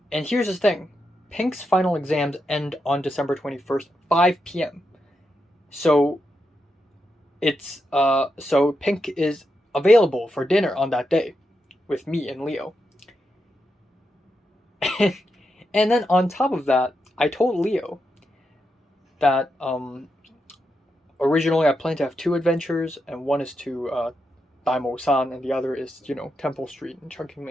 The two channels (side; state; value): both; normal; correlation 0.85